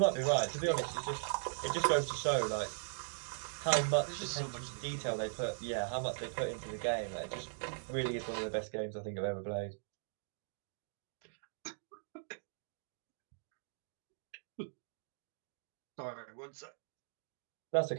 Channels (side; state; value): left; silent; digital silence